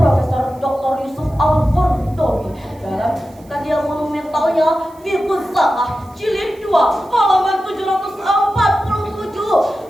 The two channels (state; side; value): noise; right; hiss, 29 dB below the sound